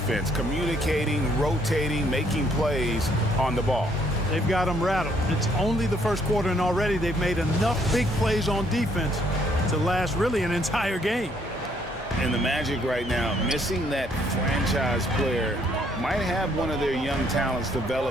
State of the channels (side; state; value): both; normal; correlation 0.67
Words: communicating, rotating, making plays on the ball. They've got them rattled. It's only the first quarter, and already they've made enough big plays on defense to last really an entire game. And the Magic right now, missing that franchise player, might have one of their young talents